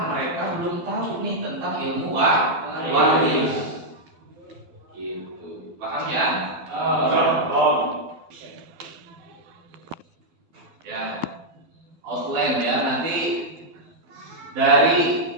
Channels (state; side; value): late; left; 12 ms